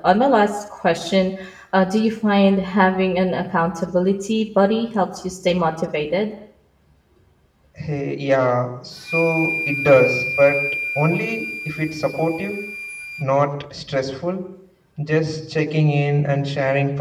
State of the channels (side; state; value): both; identical; correlation 1.00